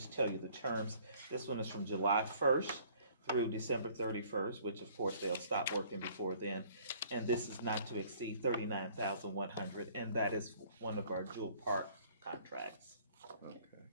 tell you the terms. This one is from July 1st through December 31st, which of course they'll stop working before then. And this is not to exceed $39,100, and that is one of our Jewel Park contracts. Okay.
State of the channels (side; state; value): both; inverted; correlation -0.57